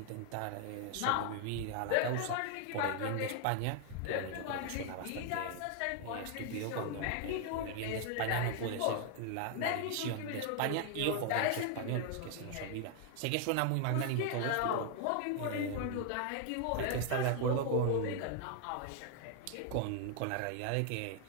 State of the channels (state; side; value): different; both; correlation 0.00